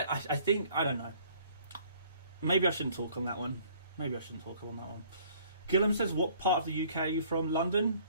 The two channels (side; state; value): both; inverted; correlation -0.57